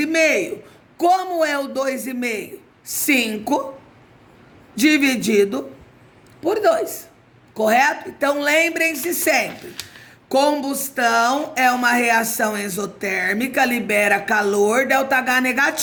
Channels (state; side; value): identical; both; correlation 1.00